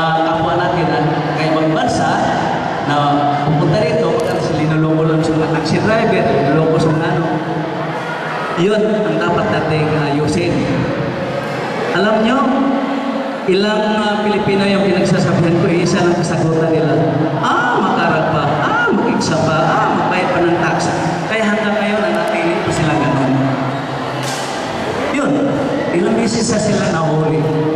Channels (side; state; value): both; identical; correlation 1.00